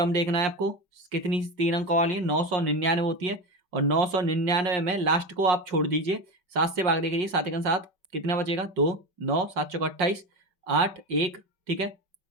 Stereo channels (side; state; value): left; late; 5.3 ms